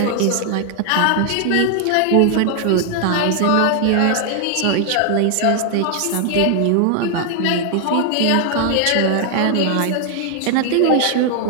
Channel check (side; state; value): both; different; correlation 0.00